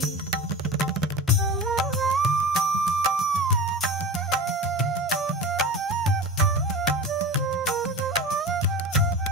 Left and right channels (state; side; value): normal; both; correlation 0.30